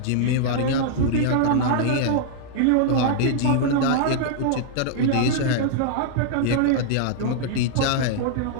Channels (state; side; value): different; both; correlation -0.01